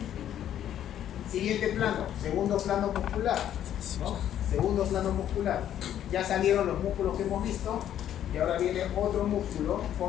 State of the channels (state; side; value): quieter; right; 10.8 dB